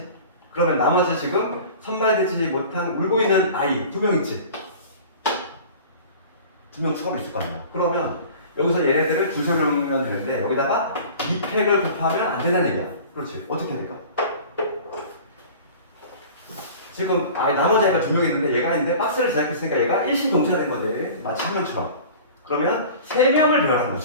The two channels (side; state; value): both; inverted; correlation -0.41